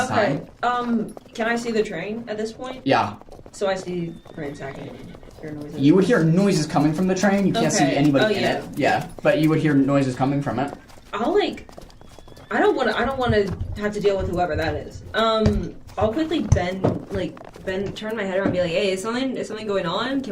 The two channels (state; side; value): identical; both; correlation 1.00